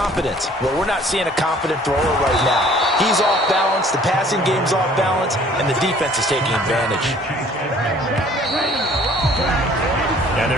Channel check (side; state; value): both; normal; correlation 0.54